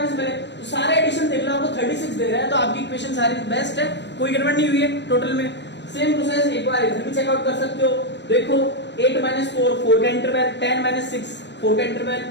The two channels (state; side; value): late; right; 0.51 ms